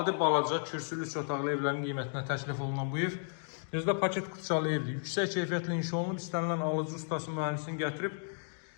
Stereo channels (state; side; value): silent; right; digital silence